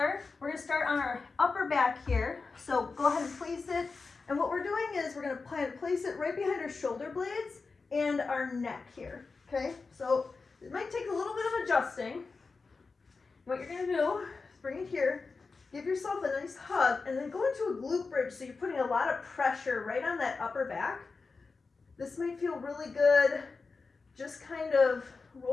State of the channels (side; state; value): right; quieter; 4.3 dB